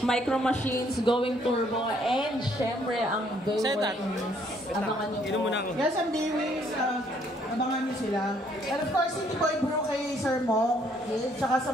Micro Machines, Going Turbo, and syempre ang B-Wings. Abangan nyo po. Yes, ang B-Wings. Abangan nyo sila. And of course, City Boy Bro kay Sir Mo. Tsaka sa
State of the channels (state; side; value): normal; both; correlation 0.66